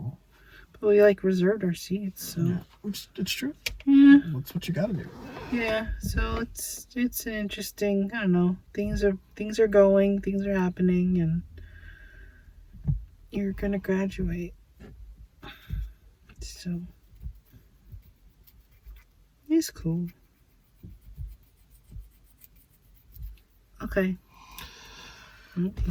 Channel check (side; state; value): both; identical; correlation 1.00